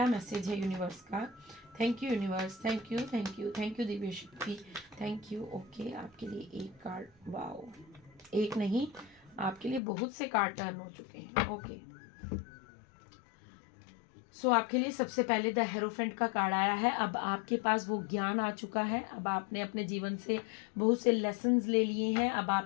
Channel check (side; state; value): right; drops out; at 9.8 s